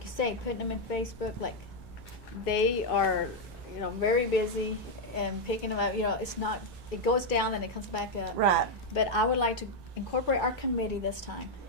you say, putting them in Facebook, like, they are, you know, very busy and picking them up, you know, it's not, it goes down and it comes back up. Right. But I would like to incorporate our committee this time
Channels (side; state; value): both; normal; correlation 0.00